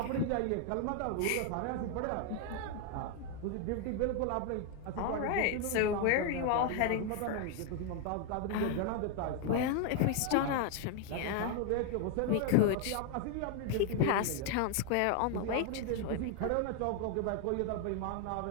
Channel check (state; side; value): different; both; correlation 0.00